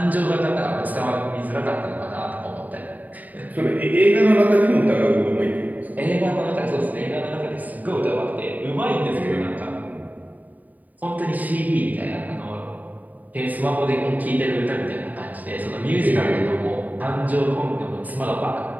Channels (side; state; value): left; late; 0.079 ms